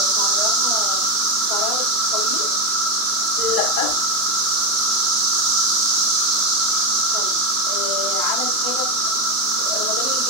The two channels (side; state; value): left; late; 2.9 ms